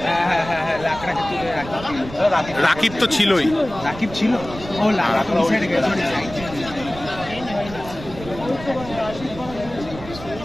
রাকিব তো ছিলই। রাকিব ছিল, ও লাগা তো সাইডে গেছে।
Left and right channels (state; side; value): noise; right; rumble, 13 dB below the sound